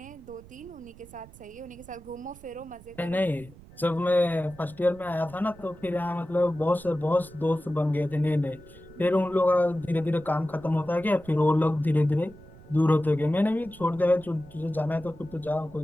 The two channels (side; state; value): right; noise; rumble, 21 dB below the sound